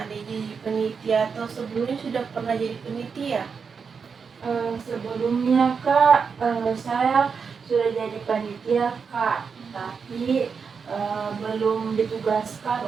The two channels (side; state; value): left; quieter; 5.8 dB